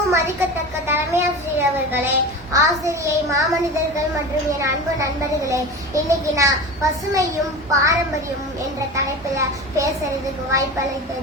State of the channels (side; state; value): both; normal; correlation 0.30